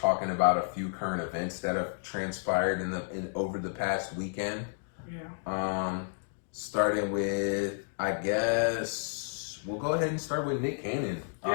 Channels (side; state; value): right; silent; digital silence